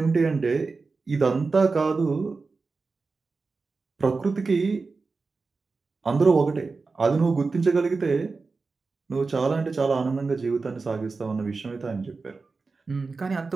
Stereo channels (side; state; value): left; quieter; 4.2 dB